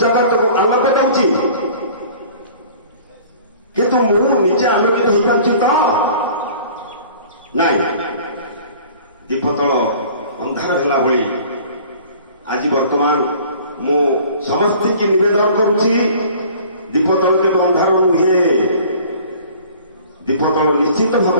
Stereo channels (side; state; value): both; inverted; correlation -0.48